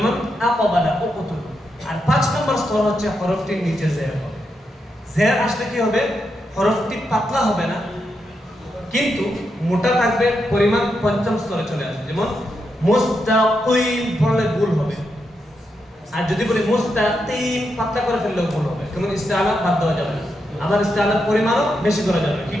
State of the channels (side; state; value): both; normal; correlation 0.84